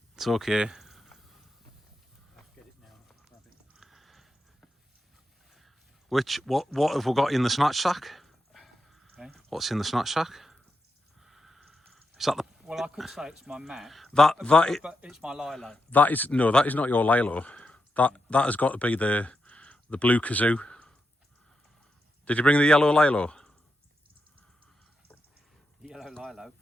It's okay. What have we got in the snatch sack? Okay. What's in the snatch sack? Is that the? Well, I could say it's my mat. But it's my Lilo. That is that is not your Lilo. That has got to be the blue kazoo. Did you bring the yellow Lilo? Yellow Lilo,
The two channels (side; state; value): both; normal; correlation 0.85